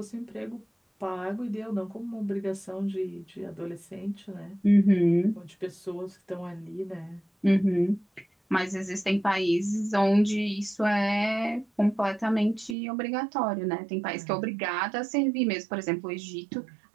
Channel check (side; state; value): left; drops out; at 12.8 s